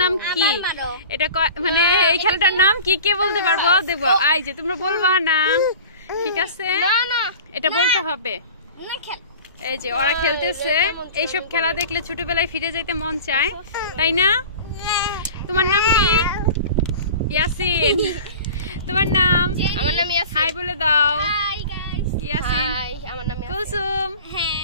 নাম কি, এটা মানে এই খেলাটার নাম কি কে বলতে পারবো দেখবো। এই যে তোমরা বলবা না, ঠিক আছে? এটা বলতে হবে। এই যে ওরা খেলতেছে, এইসব খেলা দেখলে ছোটবেলায় ফিরে যেতে মন চায়, তাই না? তোমার নাম কি? ইয়াসিন। তোমার নাম? আমার নাম ইয়াসিন। হাই বলে দাও। Hi guys. ইয়াসিন। হাই, আমার নাম ইয়াসিন। কুলসুম।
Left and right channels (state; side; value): inverted; both; correlation -0.39